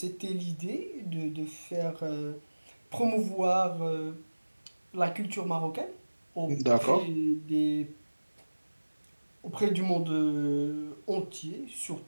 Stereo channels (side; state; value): both; inverted; correlation -1.00